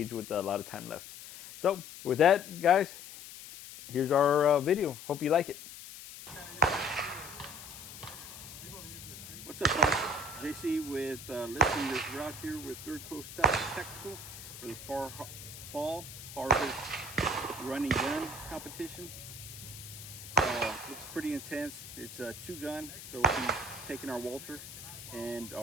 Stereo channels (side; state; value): left; noise; hiss, 13 dB below the sound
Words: with a lot of time left. So with that, guys, here's our video. Hope you like it. What's up, guys? JC with listing this route here with Third Coast Tactical for the fall harvest running gun competition. Looks pretty intense. It's a 2-gun, so we'll be taking our Walther and